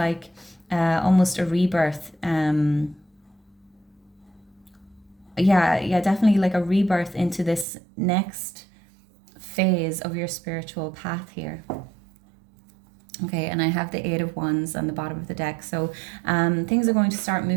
almost a rebirth. Yeah, definitely like a rebirth into this next phase of your spiritual path here. Okay, and I have the Eight of Wands on the bottom of the deck, so things are going to start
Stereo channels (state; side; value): drops out; left; at 7.7 s